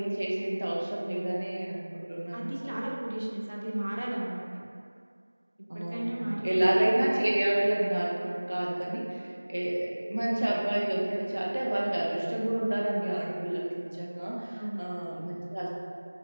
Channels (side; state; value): both; inverted; correlation -1.00